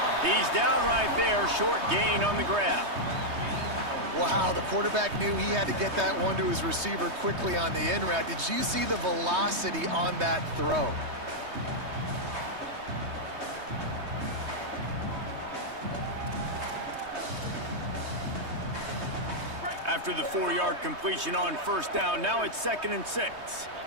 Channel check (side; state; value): left; late; 3.2 ms